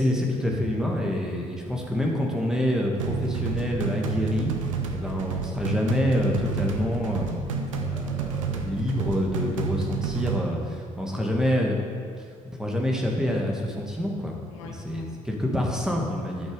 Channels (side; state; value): both; normal; correlation 0.67